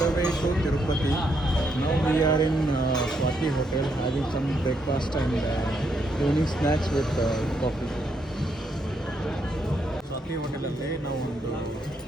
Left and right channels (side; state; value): both; normal; correlation 0.76